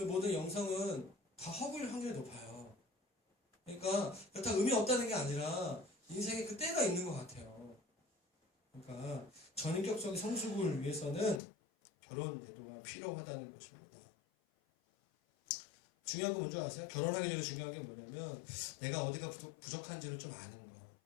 모든 영성은 다 허구일 확률이 높아요. 그러니까 그렇다고 의미 없다는 게 아니라 인생에 그 때가 있는 것 같아요. 그러니까 전인격적인 성숙을 위해서는 결혼 제도가 필요하다는 것입니다. 중요한 거 뭔지 아세요? 결혼하기 전에 중요한 게 뭐냐면 내가 어디가 부족한지를 좀 아는 거.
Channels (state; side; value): drops out; right; at 11.4 s